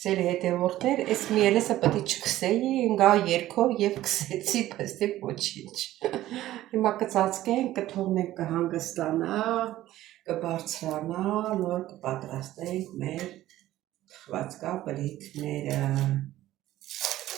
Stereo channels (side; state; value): left; quieter; 14.7 dB